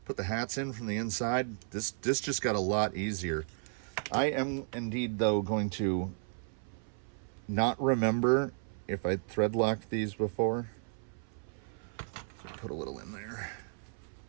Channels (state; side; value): silent; left; 55 dB below the other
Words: put the hats in from the inside, this just got a lot easier. I am indeed, though, going to not remember if I thread locked these before. So put a little in there.